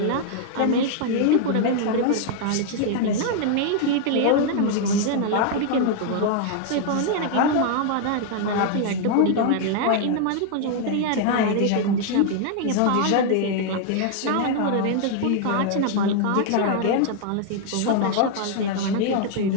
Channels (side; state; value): both; different; correlation 0.00